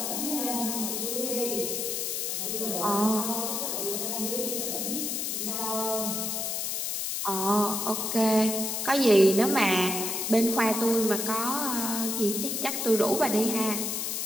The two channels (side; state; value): left; noise; hiss, 1 dB below the sound